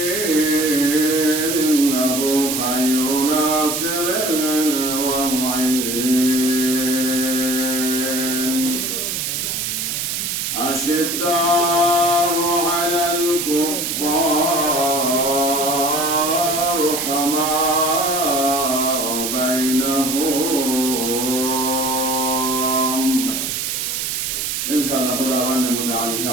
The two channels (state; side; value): noise; right; hiss, 2 dB below the sound